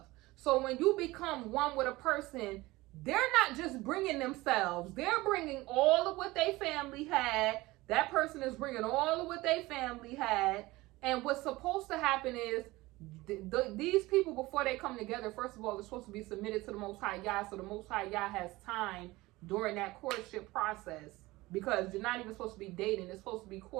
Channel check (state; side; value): quieter; left; 20.0 dB